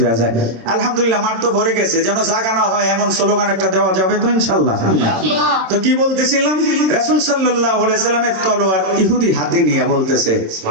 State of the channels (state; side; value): late; left; 27 ms